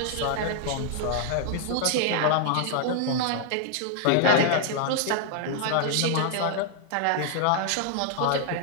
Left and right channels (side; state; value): both; different; correlation 0.00